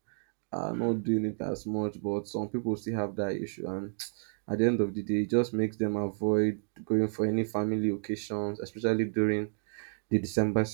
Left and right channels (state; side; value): silent; left; digital silence